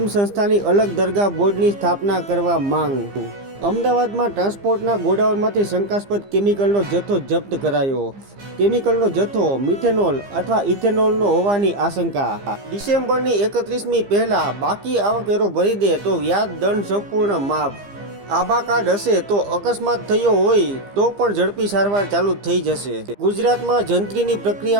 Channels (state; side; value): late; left; 15 ms